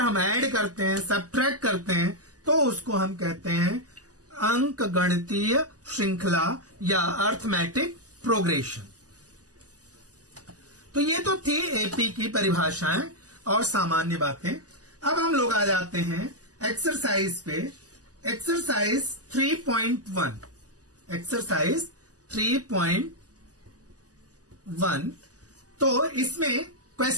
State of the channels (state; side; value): late; left; 0.67 ms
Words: ऐड करते हैं, सब्ट्रैक्ट करते हैं, तो उसको हम कहते हैं अंक गणितीय श्रृंखला या अर्थमेटिक प्रोग्रेशन। तो ये तो थी एपी की परिभाषाएं और सामान्य बातें। अब हम लोग आ जाते हैं एक्सरसाइज पे। एक्सरसाइज 3.1, एक्सरसाइज 3.1, तो इसमें